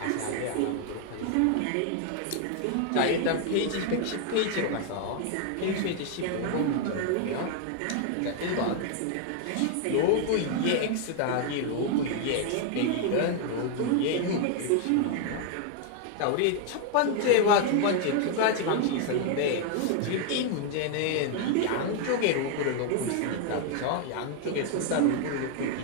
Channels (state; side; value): different; both; correlation 0.00